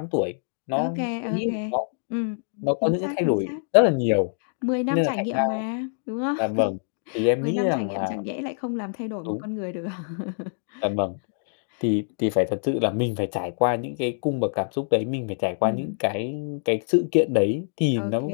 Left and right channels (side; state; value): right; silent; digital silence